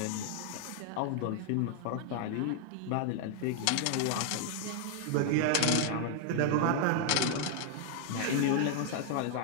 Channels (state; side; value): different; both; correlation 0.00